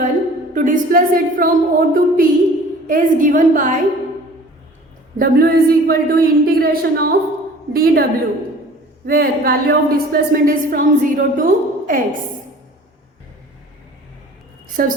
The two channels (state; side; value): normal; both; correlation 0.47